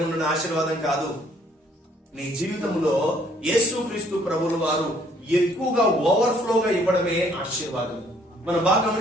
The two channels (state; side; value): normal; both; correlation 0.63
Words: ఉన్న ఆశీర్వాదం కాదు. నీ జీవితంలో యేసుక్రీస్తు ప్రభువుల వారు ఎక్కువగా ఓవర్ఫ్లోగా ఇవ్వడమే ఆశీర్వాదం. మనం బాగా